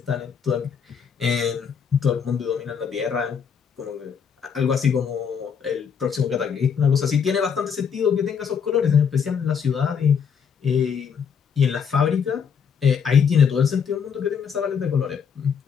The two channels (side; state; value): right; quieter; 7.0 dB